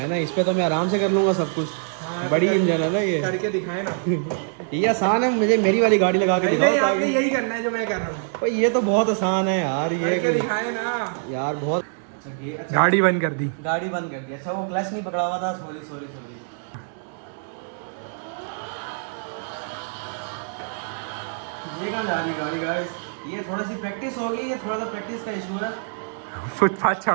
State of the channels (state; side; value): silent; left; digital silence